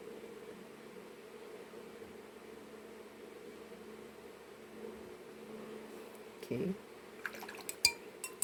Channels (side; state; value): both; identical; correlation 1.00